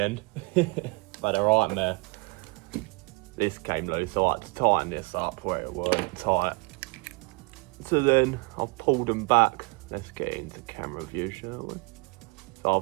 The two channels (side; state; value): left; quieter; 29.8 dB